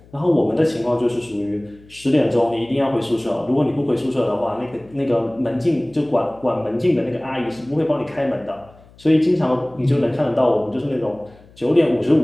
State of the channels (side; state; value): left; noise; hum, 26 dB below the sound